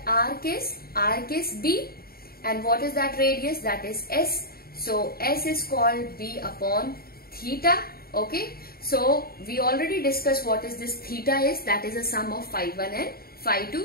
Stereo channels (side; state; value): right; late; 0.44 ms